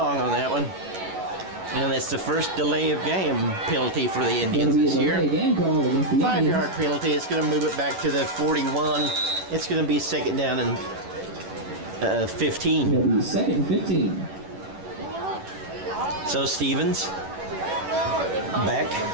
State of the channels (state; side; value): late; left; 11 ms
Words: on that one. And it's the first delay of game penalty for the Indians this year. 5-yard penalty. It's going to move it back to the 41. It's going to be 2nd down and 15. It'll be 2nd and 15. So Stevens back